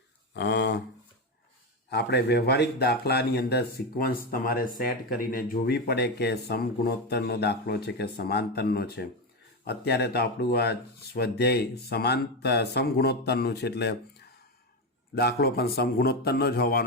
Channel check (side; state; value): both; normal; correlation 0.13